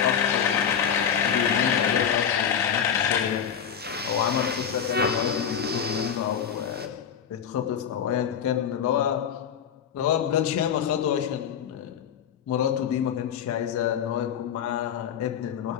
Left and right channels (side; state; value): right; quieter; 8.1 dB